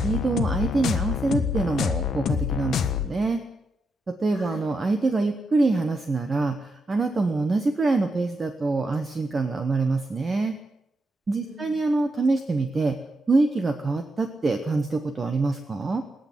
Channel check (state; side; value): normal; both; correlation 0.83